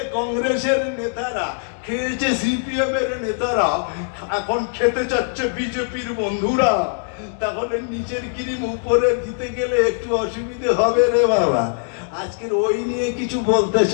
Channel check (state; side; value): silent; right; digital silence